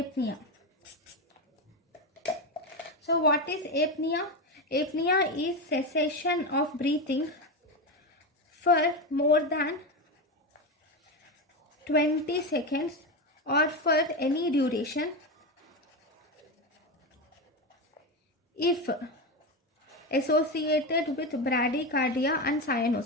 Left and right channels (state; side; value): normal; both; correlation 0.16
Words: So what is apnea? Apnea is cessation of breathing for more than 20 seconds or for any duration if associated with bradycardia and